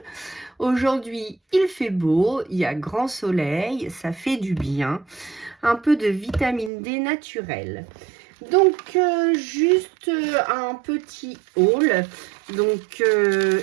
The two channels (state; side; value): drops out; left; at 6.7 s